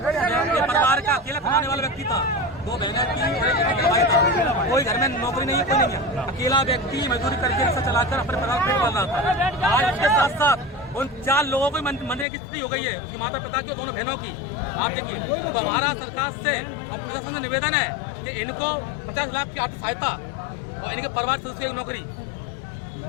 ये परिवार का अकेला कमाने वाला व्यक्ति था, 2 बहनें थी और एक भाई था। कोई घर में नौकरी नहीं है, कोई नहीं है, अकेला व्यक्ति मजदूरी करके रिक्शा चलाकर अपने परिवार को पेट पाल रहा था। आज उसके साथ साथ उन 4 लोगों को मरने की स्थिति हो गई है, उसकी माता पिता की, दोनों बहनों की। आप देखिए, तो हमारा सरकार से और प्रशासन से निवेदन है कि इनको 50 लाख की आर्थिक सहायता और इनके परिवार सदस्य की नौकरी।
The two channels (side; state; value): right; drops out; at 12.2 s